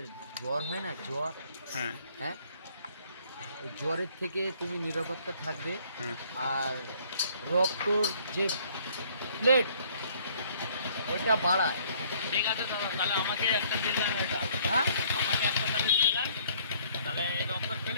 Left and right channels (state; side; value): inverted; both; correlation -0.60